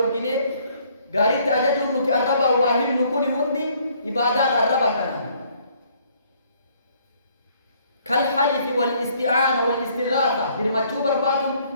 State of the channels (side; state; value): both; inverted; correlation -0.64